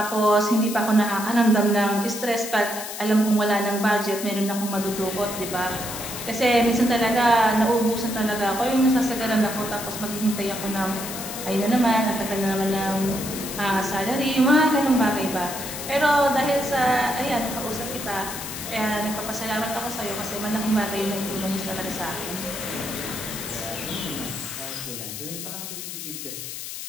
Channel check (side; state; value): left; noise; hiss, 8 dB below the sound